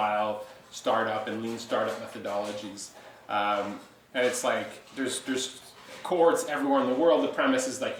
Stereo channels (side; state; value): both; identical; correlation 1.00